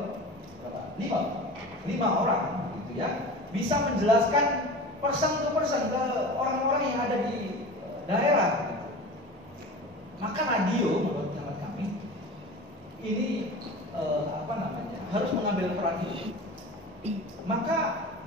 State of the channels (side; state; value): both; normal; correlation 0.34